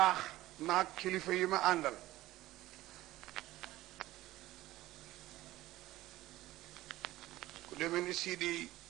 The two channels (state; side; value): quieter; left; 16.4 dB